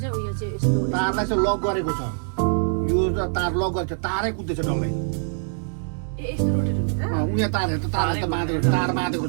उयो चाहिँ यस्तो तारलाई चाहिँ लक गरेको छ यो त तार लक गरेको छ तारै कुदेछ डल्लै ए यस्तो रोटेट हुन्छ उहाँ तार हेर्छ तार बाँधेको तार बाँधेको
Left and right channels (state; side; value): silent; left; digital silence